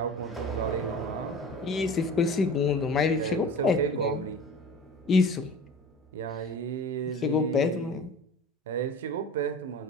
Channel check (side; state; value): both; normal; correlation 0.38